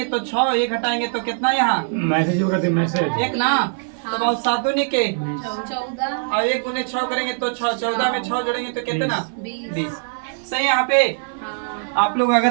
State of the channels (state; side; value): silent; left; 57 dB below the other